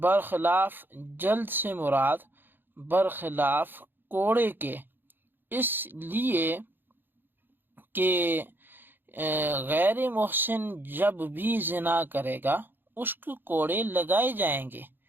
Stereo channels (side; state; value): left; late; 0.096 ms